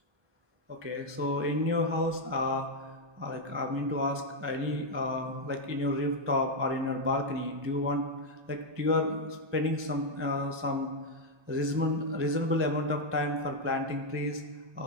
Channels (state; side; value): late; left; 1.2 ms